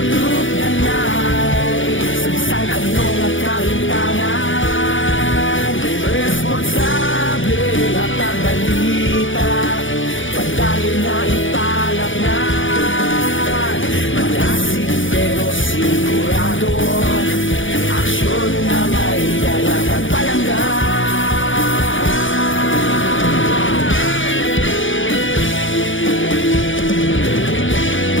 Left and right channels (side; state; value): right; late; 0.57 ms